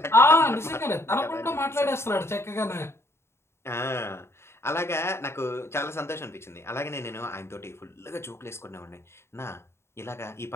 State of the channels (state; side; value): late; right; 0.12 ms